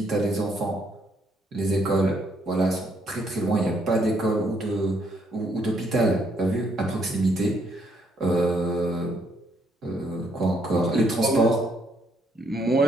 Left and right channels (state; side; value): normal; both; correlation 0.71